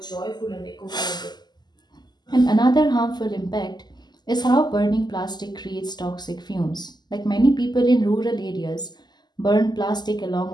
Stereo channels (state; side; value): late; right; 0.21 ms